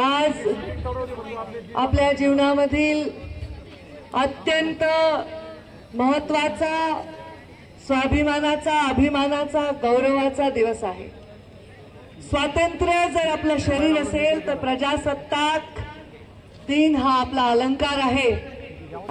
आपल्या जीवनामधील अत्यंत महत्त्वाचा, स्वाभिमानाचा, अभिमानाचा, गौरवाचा दिवस आहे। स्वातंत्र्य जर आपलं शरीर असेल तर प्रजासत्ताक दिन हा आपला अलंकार आहे।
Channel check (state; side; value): identical; both; correlation 1.00